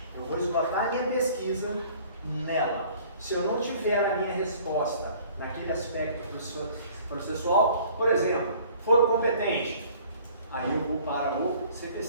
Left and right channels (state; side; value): inverted; both; correlation -0.52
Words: eu vou esgotar a minha pesquisa nela. Se eu não tiver a minha resposta naquele aspecto processual, por exemplo, foro competente, aí eu vou para o